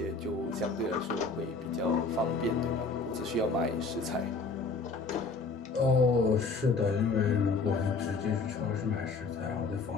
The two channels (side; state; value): right; quieter; 4.2 dB